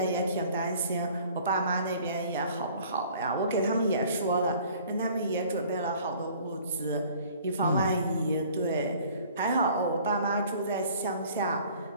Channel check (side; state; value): both; inverted; correlation -0.53